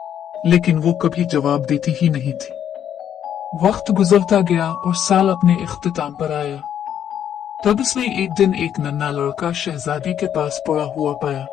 लेकिन वो कभी जवाब देती ही नहीं थी। वक्त गुजरता गया और साल अपने इख्तिताम पर आया। तब उसने एक दिन एक नन्हा लड़का शहजादी के पास पड़ा हुआ पाया।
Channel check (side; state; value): right; quieter; 9.6 dB